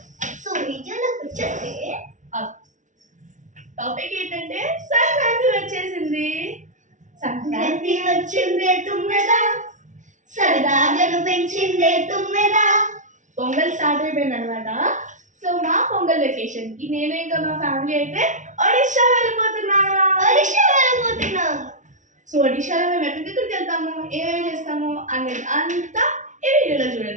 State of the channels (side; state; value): left; late; 0.36 ms